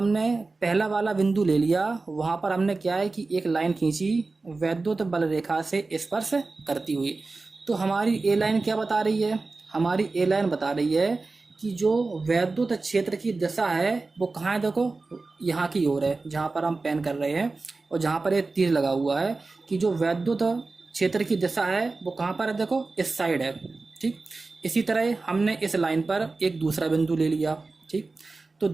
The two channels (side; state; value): left; quieter; 3.7 dB